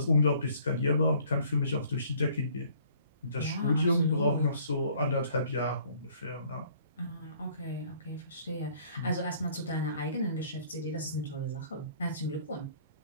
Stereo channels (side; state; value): both; inverted; correlation -0.58